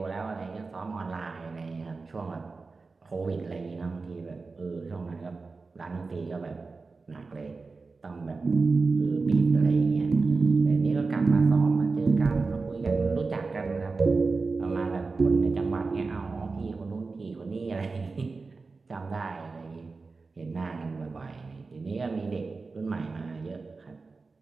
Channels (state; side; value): quieter; left; 4.1 dB